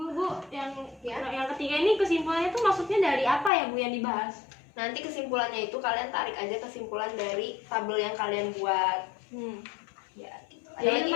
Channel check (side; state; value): right; drops out; at 3.5 s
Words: yang ketiga ini kesimpulannya tuh maksudnya dari apa ya, Bu, yang dibahas? Nanti kesimpulannya itu kalian tarik aja kesimpulan dari tabel yang kalian buat. Ya, gitu. Ada Jadi lagi?